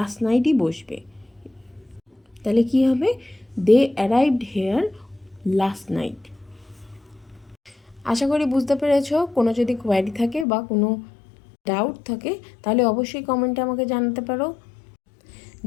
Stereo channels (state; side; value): drops out; right; at 10.5 s